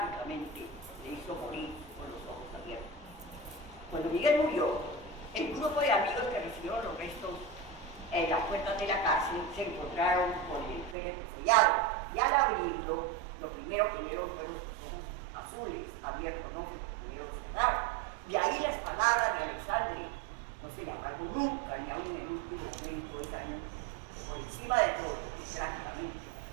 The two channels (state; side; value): drops out; left; at 11.0 s